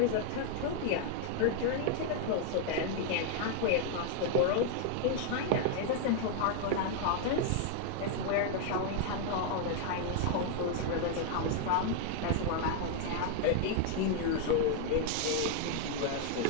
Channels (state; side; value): different; both; correlation 0.00